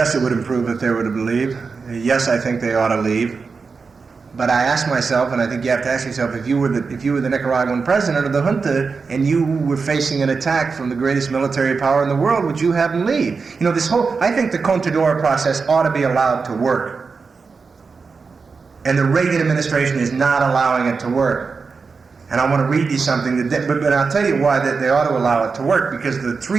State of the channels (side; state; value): left; quieter; 4.8 dB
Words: it would improve if they were to leave. Yes, I think they ought to leave. But I ask myself, and I think you have to ask yourself, if you were the Nicaraguan president of the junta and you were facing an attack from the greatest military power in the world, would you have them leave? I think the Contadora process ought to be allowed to work. And the Reagan administration is not allowing it to work. And I want to read you something, but I'll tell you why they ought to allow it to work, because the